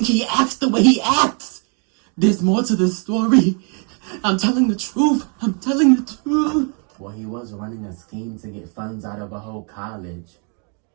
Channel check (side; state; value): left; quieter; 39.1 dB